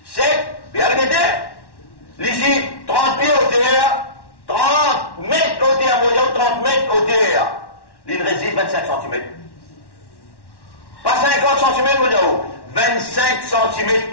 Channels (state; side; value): late; right; 1.1 ms